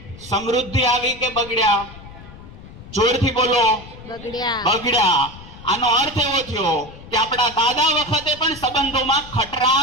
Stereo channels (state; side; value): noise; left; rumble, 17 dB below the sound